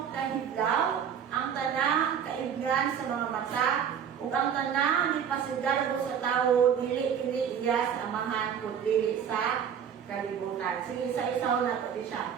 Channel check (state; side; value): quieter; left; 8.0 dB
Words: kahidlaw, ang tanang kaibgan sa mga mata, ug ang tanang ipasigarbo sa tawo dili kini iya sa amahan kun dili sa kalibutan. Sige, isa-isaw na to siya.